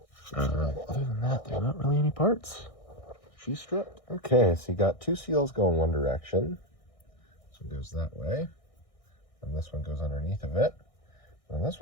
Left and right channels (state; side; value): late; right; 1.6 ms